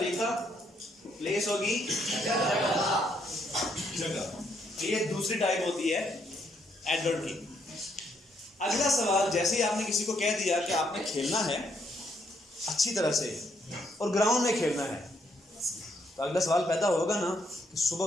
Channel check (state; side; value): normal; both; correlation 0.73